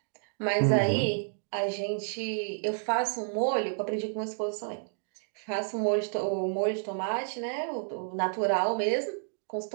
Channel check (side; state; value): left; silent; digital silence